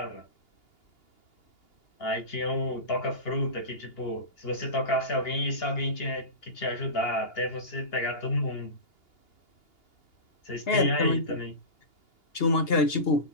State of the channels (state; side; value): late; right; 2.8 ms